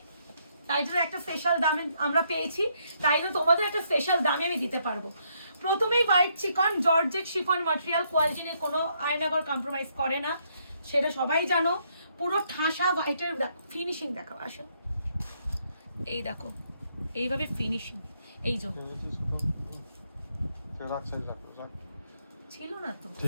তাই জন্য একটা স্পেশাল দামে আমরা পেয়েছি, তাই জন্য তোমাদের একটা স্পেশাল দামে আমি দিতে পারবো। প্রথমেই হোয়াইট চিকন জর্জেট শিফন ম্যাটেরিয়াল, কোয়ালিটি নিয়ে কোনো আয়নাগর কম্প্রোমাইজ করে না, সেটা সবাই জানো। পুরো ঠাসা হোয়াইটের ফিনিশিং দেখো, আসো এই দেখো এইভাবে ফিনিশিং, এই যে ছিল না তো,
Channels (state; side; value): inverted; both; correlation -0.73